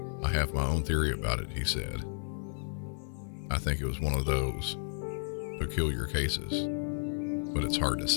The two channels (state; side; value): silent; right; 56 dB below the other